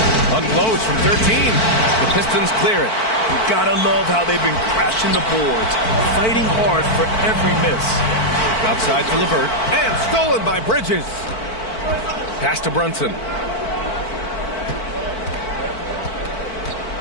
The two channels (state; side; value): late; right; 4.5 ms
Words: Unloads from 13. The Pistons clear it. You gotta love how they've been crashing the boards, fighting hard for every miss. Outside for LeVert, and stolen by Bridges. Pass to Brunson.